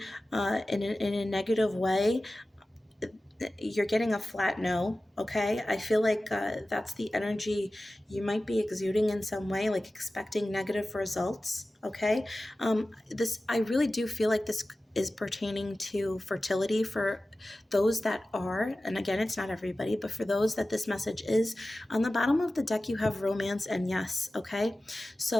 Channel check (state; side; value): normal; both; correlation 0.96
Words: a negative way, you're getting a flat no. Okay, I feel like that's the energy you might be exuding in some way, like expecting negative results. Okay, I really do feel like this is pertaining to fertility for those that are, and again, it's not everybody, but for those that this message is. On the bottom of the deck, you have romance and yes. Okay,